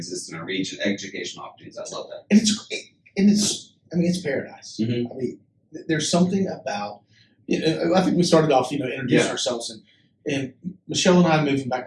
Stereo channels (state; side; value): identical; both; correlation 1.00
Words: in our region, educational opportunities. I love that. And it's great. And it's paradise. Mm-hmm. I mean, there's something about, I think we started off, introducing ourselves, and Michelle and I moving back